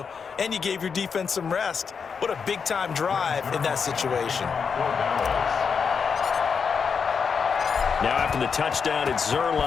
and you gave your defense some rest. What a big-time drive in that situation. Now after the touchdown, it's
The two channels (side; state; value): right; quieter; 6.0 dB